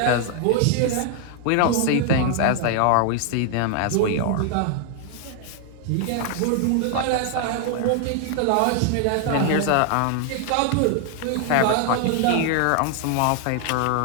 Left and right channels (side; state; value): both; different; correlation 0.00